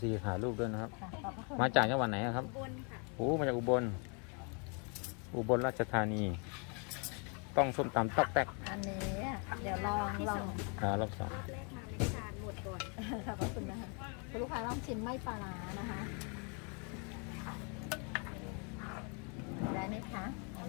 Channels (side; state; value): right; quieter; 36.3 dB